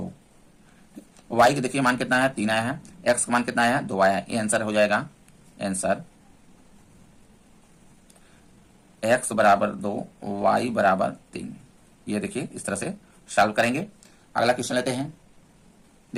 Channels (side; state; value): both; identical; correlation 1.00